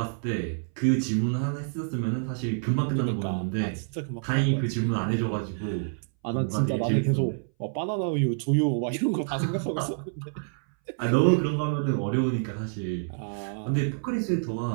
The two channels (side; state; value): left; silent; 59 dB below the other